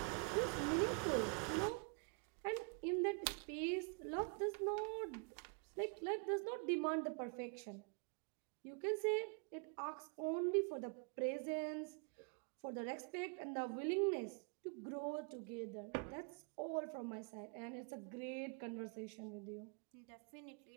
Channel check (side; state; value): left; quieter; 35.7 dB